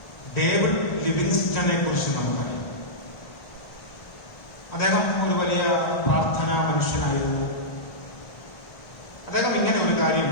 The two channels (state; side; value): late; right; 1.4 ms